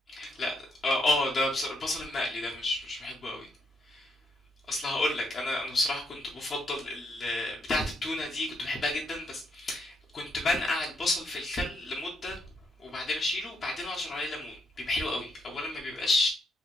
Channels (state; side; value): normal; both; correlation 0.76